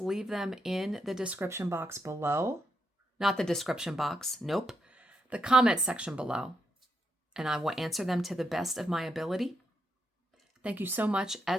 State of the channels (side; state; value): both; normal; correlation 0.82